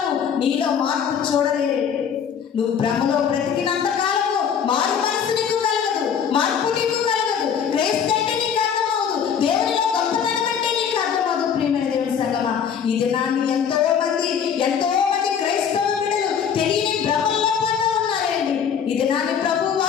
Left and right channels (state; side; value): quieter; right; 7.6 dB